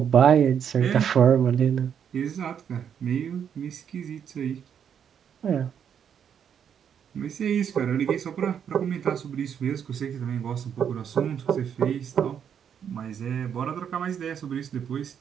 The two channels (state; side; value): quieter; left; 8.2 dB